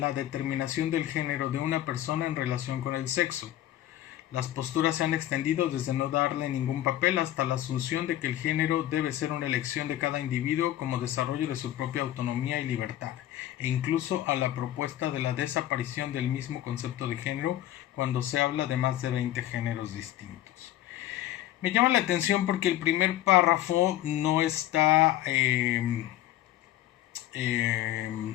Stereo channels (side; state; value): right; quieter; 13.5 dB